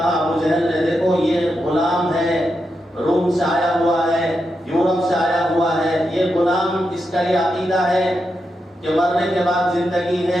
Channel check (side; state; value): both; normal; correlation 0.86